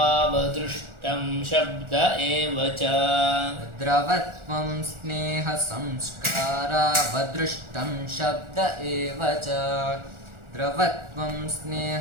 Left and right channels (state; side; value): late; left; 1.4 ms